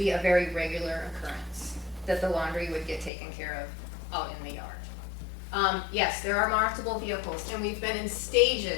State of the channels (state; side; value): drops out; right; at 3.1 s